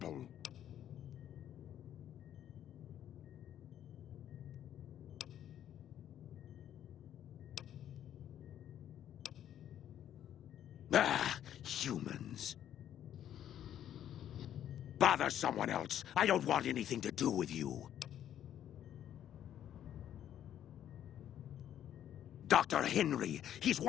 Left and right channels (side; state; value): right; quieter; 10.7 dB